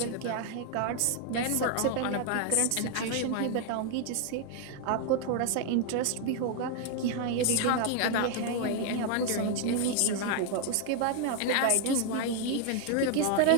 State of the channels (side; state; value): both; different; correlation 0.00